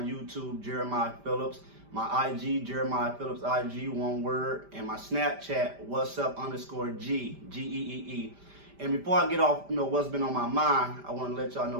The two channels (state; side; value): late; left; 5.1 ms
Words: YouTube, Jeremiah Phillips, my IG, Jeremiah Phillips IG, one word, and my Snapchat, what's up _G, G-E-E-E. And before I get off, what's been on my mind, I want to let y'all